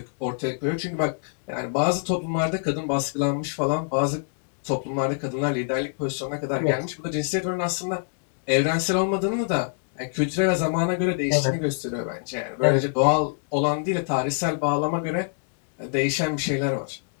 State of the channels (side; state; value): right; silent; digital silence